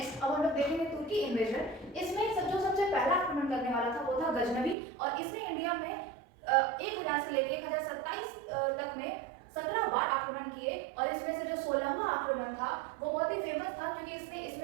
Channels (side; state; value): left; drops out; at 4.8 s